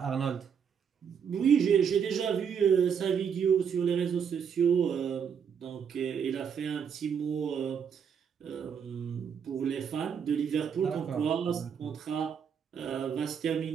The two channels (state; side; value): quieter; left; 7.3 dB